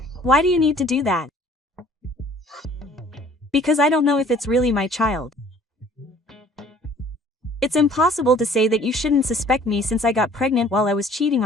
Why do you need to do that? Because I don't know if it's really my child. It's impossible to say that you shouldn't suspect me since I got pregnant while I was cheating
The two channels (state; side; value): normal; both; correlation 0.54